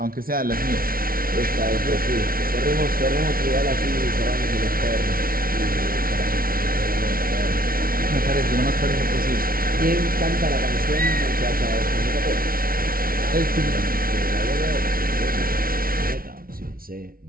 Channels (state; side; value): late; left; 0.43 ms